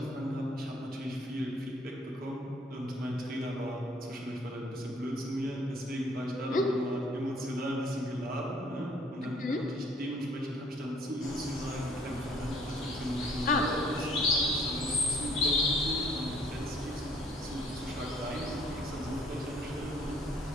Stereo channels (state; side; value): normal; both; correlation 0.60